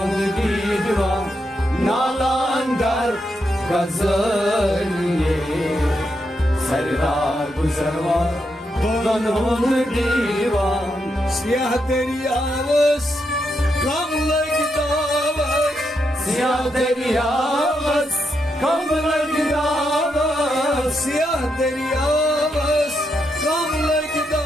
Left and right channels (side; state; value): both; normal; correlation 0.82